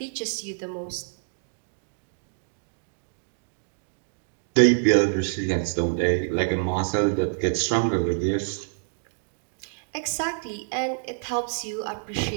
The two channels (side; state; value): left; silent; digital silence